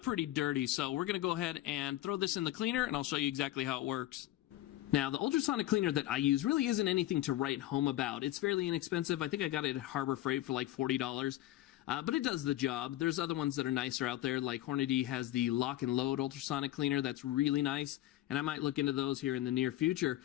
pretty dirty, so we're going to go ahead and throw this in the cleaner, and I'll show you exactly how it works. Now, the ultrasonic cleaner that I use really isn't anything to write home about. It's fairly inexpensive. I think I got it at Harbor Freight for like $40. But it does the job. There's other ones that are nicer out there, like Hornady has the lock and load ultrasonic cleaner that's really nice, and I might look into those here in the near future.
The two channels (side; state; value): right; quieter; 14.9 dB